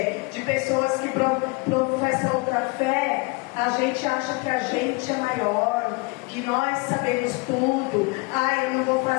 de pessoas que professam outra fé, a gente acha que a gente é maior, que nós sabemos tudo. Eu não vou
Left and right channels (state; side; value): quieter; right; 27.8 dB